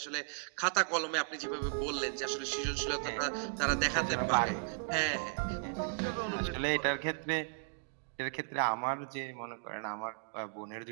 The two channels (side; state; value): left; silent; digital silence